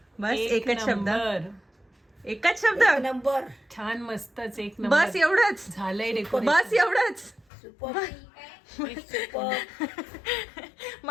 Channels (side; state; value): right; drops out; at 7.5 s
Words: बस एकच शब्द. एकच शब्द. नंबर. छान, मस्तच, एक नंबर. बस एवढंच. झालंय डेकोरेशन. बस एवढंच. सुपर. सुपर.